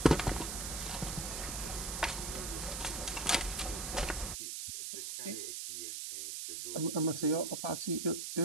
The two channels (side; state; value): right; noise; hiss, 4 dB below the sound